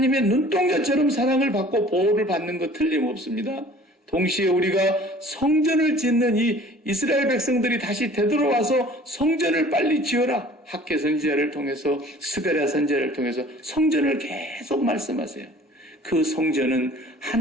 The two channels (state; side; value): normal; both; correlation 0.49